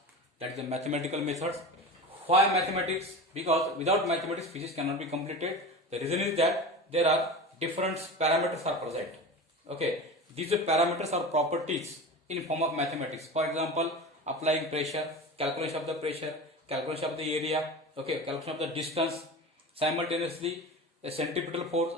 that is the mathematical methods. Why mathematics? Because without mathematics, physics cannot be completed. The reason is that there are different parameters are present. Okay, these parameters are properties in form of mathematics. For example, applying pressure, calculation of the pressure, calculation of the area, okay, calculation of the distance, simultaneously a centripetal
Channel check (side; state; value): both; normal; correlation 0.30